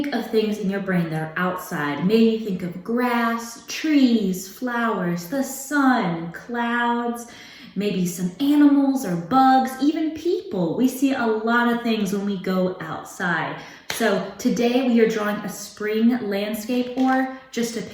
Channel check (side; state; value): both; identical; correlation 1.00